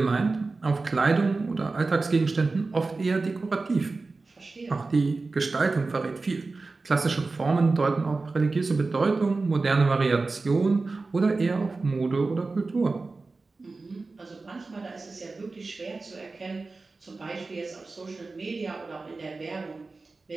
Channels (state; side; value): quieter; left; 3.7 dB